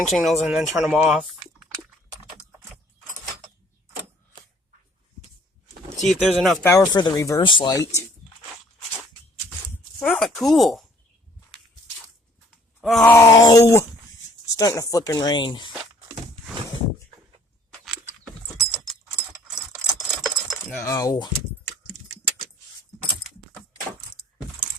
signals and then turn them off. See if there's enough power for the reverse light. Oh, cool. Oh! It's starting to flip and rain. No.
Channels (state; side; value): normal; both; correlation 0.59